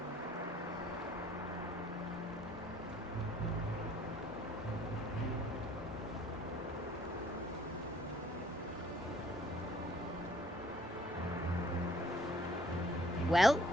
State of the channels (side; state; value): both; normal; correlation 0.59